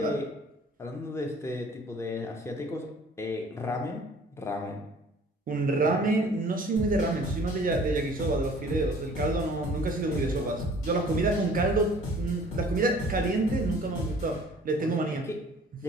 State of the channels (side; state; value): both; normal; correlation 0.51